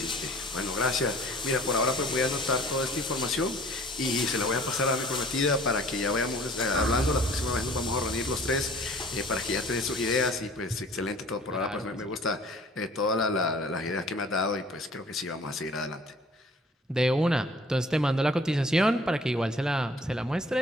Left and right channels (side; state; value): both; normal; correlation 0.51